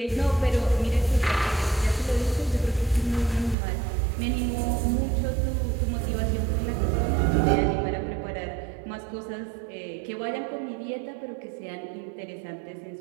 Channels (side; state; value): left; drops out; at 3.6 s